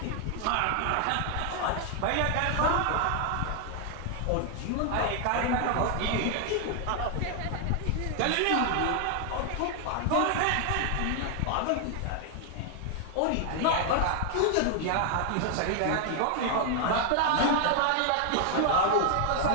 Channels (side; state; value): both; different; correlation 0.00